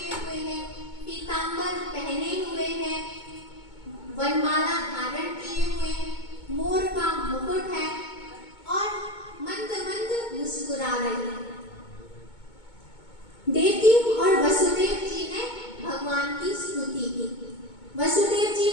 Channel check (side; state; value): right; late; 2.2 ms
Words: हुए हैं, पीतांबर पहने हुए हैं, वनमाला धारण किए हुए हैं, मोर का मुकुट है और मंद मंद मुस्कुरा रही है। देवकी और वसुदेव जी ने भगवान की स्तुति की। वसुदेव जी